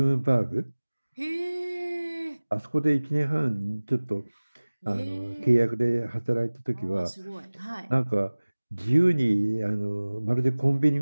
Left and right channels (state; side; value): inverted; both; correlation -1.00